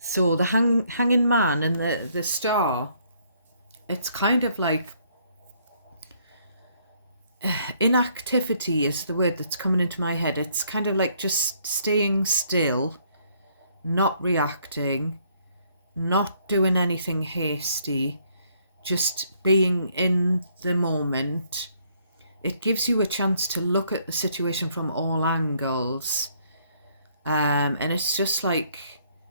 the hanging man and the star, it's kind of like inactivity is the word that's coming into my head. It's kind of like just staying still, not reacting, not doing anything hasty, just being in the moment. It gives you a chance to look at the situation from all angles. And it's just like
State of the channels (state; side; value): inverted; both; correlation -0.68